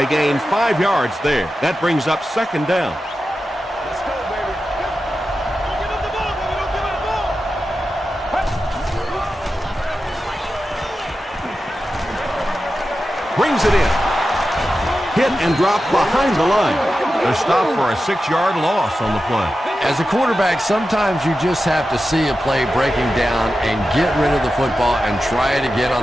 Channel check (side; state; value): both; normal; correlation 0.92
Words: gain 5 yards there. That brings up second down. Let's go, baby. Give him the ball, baby. Don't give him the ball. Brings it in. Hit and drop behind the line. They're stopped for a 6-yard loss on the play. As a quarterback, sometimes you just have to see a play breaking down and get rid of the football and try it again